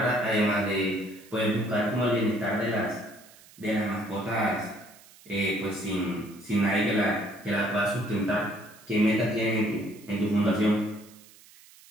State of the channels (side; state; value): right; noise; hiss, 24 dB below the sound